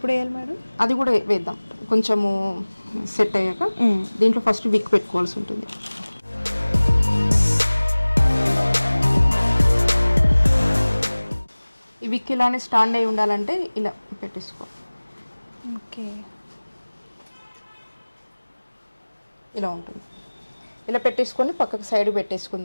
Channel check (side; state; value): both; inverted; correlation -1.00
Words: వేయాలి మేడం? అది కూడా వేద్దాం కొంచెము సెట్ అయ్యాక. దీంట్లో ఫస్ట్ విక్ పెట్టుకోవాల్సి ఉంటుంది. ఈ విక్ ఇలానే స్టాండ్ అయి ఉండాలంటే ఇలా పెట్టేసుకో. ఓకే, ఇలా ఉంటుంది. ఇలా పెట్టేసుకొని పక్కకు సైడ్